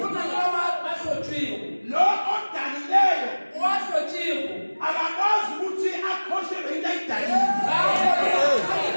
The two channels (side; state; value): both; inverted; correlation -1.00